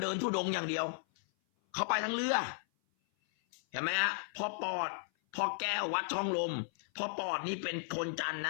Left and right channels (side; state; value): right; silent; 54 dB below the other